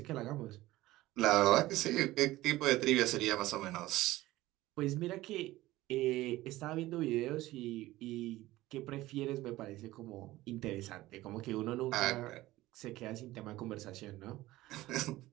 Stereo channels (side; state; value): left; quieter; 17.2 dB